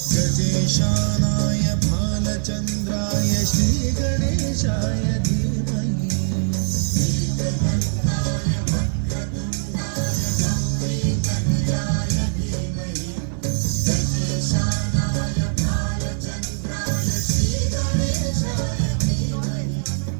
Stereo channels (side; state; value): left; silent; digital silence